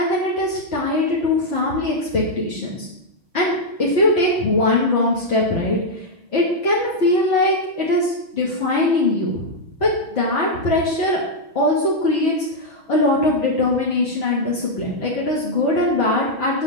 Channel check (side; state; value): left; late; 6.3 ms